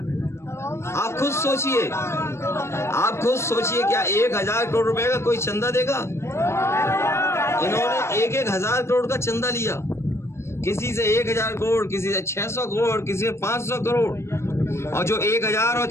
आप खुद सोचिए, क्या 1000 करोड़ रुपए का कोई चंदा देगा? इन्होंने 1,000 करोड़ का चंदा लिया, किसी से 1000 करोड़, किसी से 600 करोड़, किसी से 500 करोड़, और जो 1000 और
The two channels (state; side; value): late; right; 0.13 ms